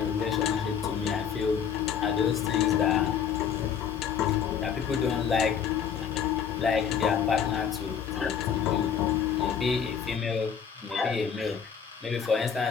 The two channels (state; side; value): quieter; right; 7.6 dB